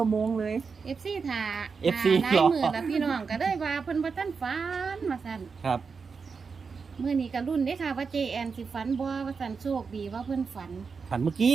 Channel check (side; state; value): left; quieter; 5.3 dB